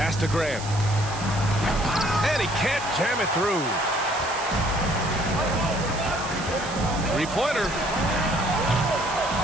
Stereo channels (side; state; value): right; noise; hiss, 12 dB below the sound